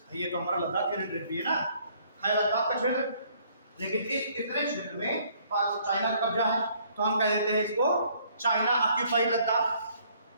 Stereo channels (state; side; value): inverted; both; correlation -0.63